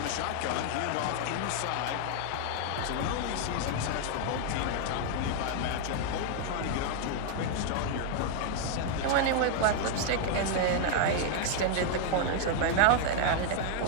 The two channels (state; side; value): different; both; correlation 0.00